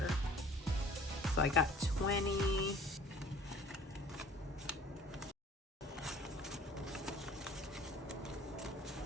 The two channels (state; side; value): normal; both; correlation 0.50